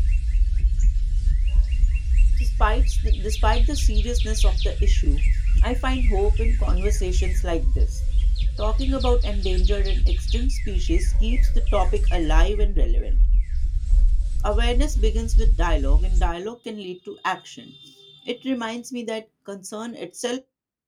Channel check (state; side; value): identical; both; correlation 1.00